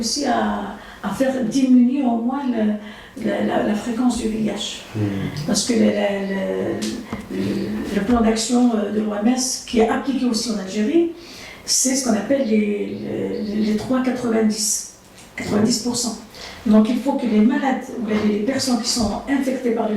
à faire diminuer au moins la fréquence du VIH. Parce que le plan d'action de l'OMS, qui est appliqué aussi en Algérie, c'est ce qu'on appelle les 3,90. 90%. Donc il faut que les malades, les personnes qui sont infectées par le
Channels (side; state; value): both; identical; correlation 1.00